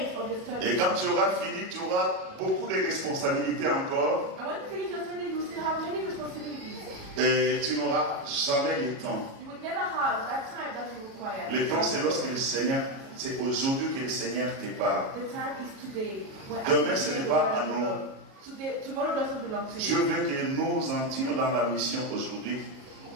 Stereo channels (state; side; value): late; left; 37 ms